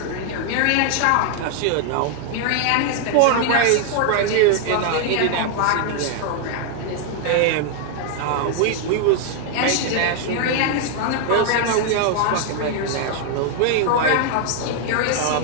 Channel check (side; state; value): both; different; correlation 0.00